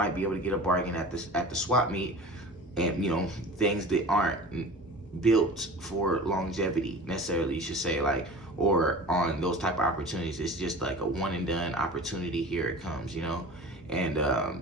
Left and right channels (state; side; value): normal; both; correlation 0.38